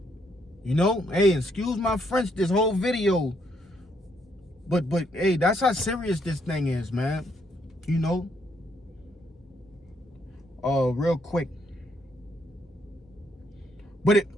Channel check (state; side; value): normal; both; correlation 0.73